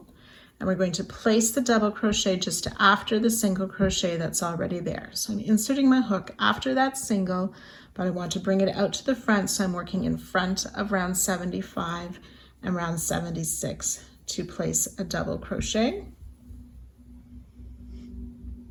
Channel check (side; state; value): both; identical; correlation 1.00